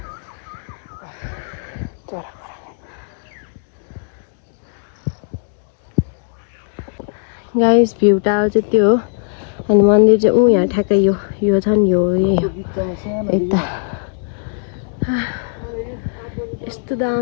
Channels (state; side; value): silent; right; digital silence